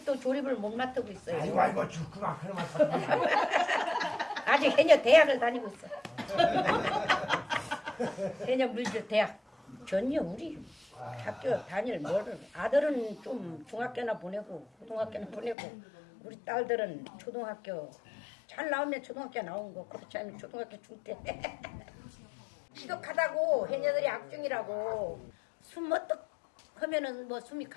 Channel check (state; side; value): drops out; right; at 15.6 s